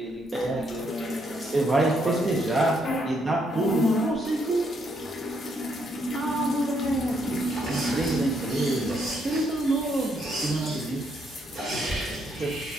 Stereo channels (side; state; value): both; normal; correlation 0.74